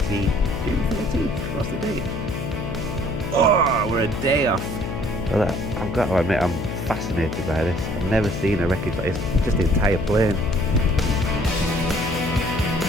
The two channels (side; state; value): left; noise; hum, 5 dB below the sound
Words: June 13th? What's the date? Oh, we're a day off. Well, I've got to admit, I'm fascinated by this. I've never seen a wreckage like this. Just the entire plane.